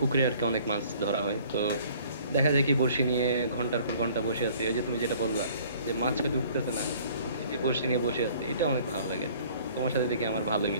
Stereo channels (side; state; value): both; inverted; correlation -0.54